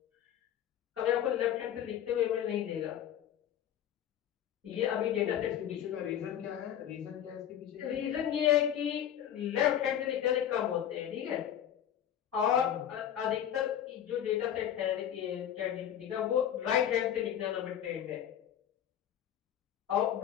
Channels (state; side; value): quieter; right; 10.3 dB